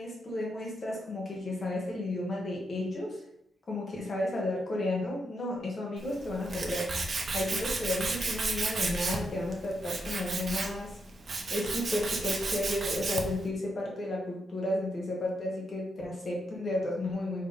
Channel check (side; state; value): both; normal; correlation 0.81